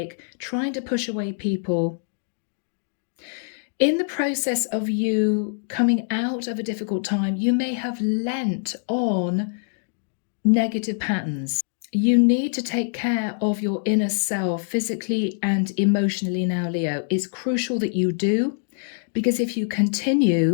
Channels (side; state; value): right; silent; digital silence